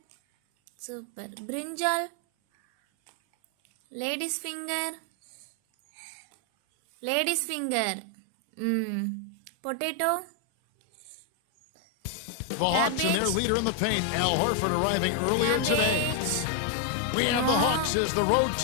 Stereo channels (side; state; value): both; different; correlation 0.00